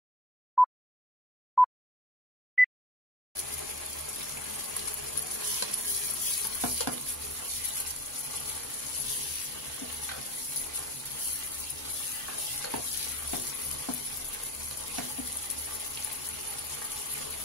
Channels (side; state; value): both; normal; correlation 0.43